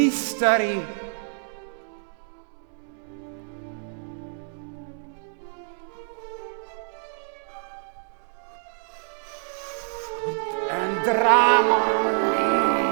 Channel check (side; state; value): left; silent; digital silence